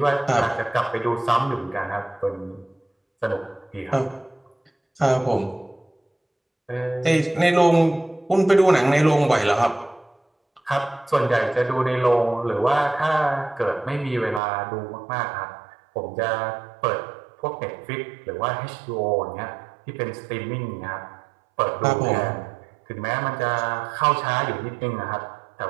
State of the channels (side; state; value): left; drops out; at 14.4 s